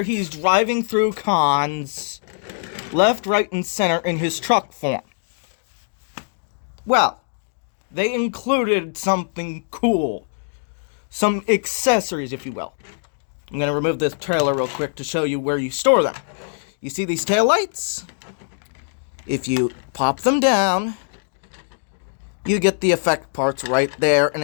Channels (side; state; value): right; silent; digital silence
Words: he's driving through cons, left, right, and center in his truck form. Well, they included something cool. Some accessories, if you will. I'm going to remove this trailer real quick to show you where you store them. You see these taillights? If you pop them down, you get the effect parts right there in